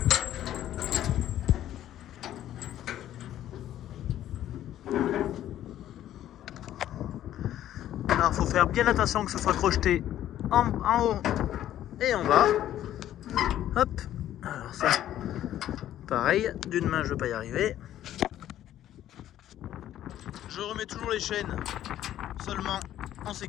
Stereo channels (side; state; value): right; quieter; 12.2 dB